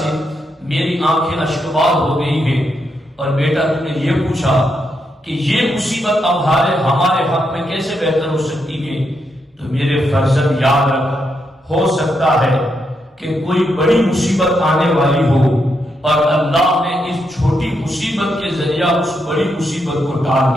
میری آنکھیں اشکبار ہو گئی ہیں۔ اور بیٹا، تم نے یہ پوچھا کہ یہ مصیبت اب ہمارے حق میں کیسے بہتر ہو سکتی ہے، تو میرے فرزند یاد رکھ، ہو سکتا ہے کہ کوئی بڑی مصیبت آنے والی ہو اور اللہ نے اس چھوٹی مصیبت کے ذریعہ اس بڑی مصیبت کو ٹال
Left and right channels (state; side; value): normal; both; correlation 0.81